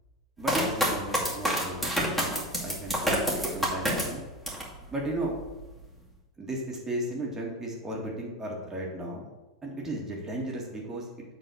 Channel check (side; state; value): both; normal; correlation 0.31